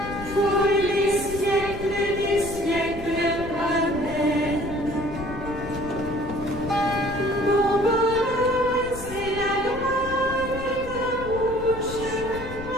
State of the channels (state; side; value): noise; left; rumble, 12 dB below the sound